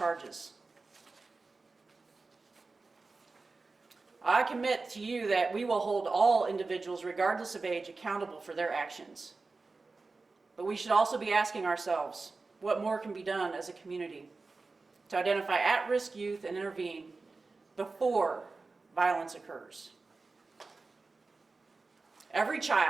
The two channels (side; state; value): left; quieter; 3.8 dB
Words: I commit to you that we will hold all individuals, regardless of age, accountable for their actions. But we should also be asking ourselves, what more can be done as a community to identify at-risk youth and intervene before violence occurs? Every